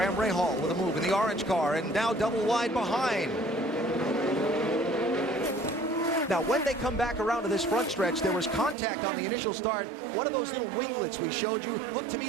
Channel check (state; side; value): drops out; left; at 8.8 s